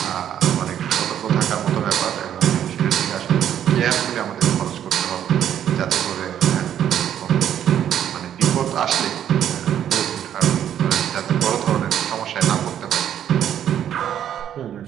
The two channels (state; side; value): quieter; left; 10.1 dB